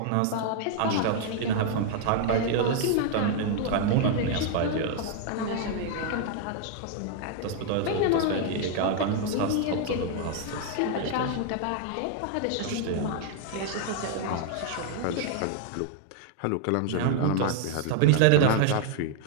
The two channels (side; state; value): both; different; correlation 0.00